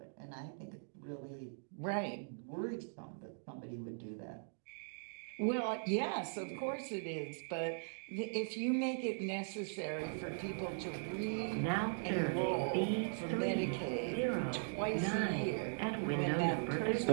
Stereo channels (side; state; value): left; silent; digital silence